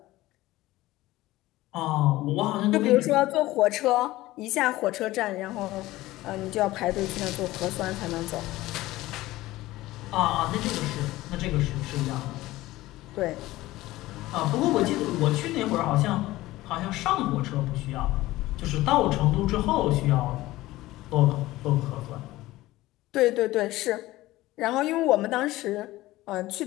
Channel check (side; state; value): right; quieter; 17.5 dB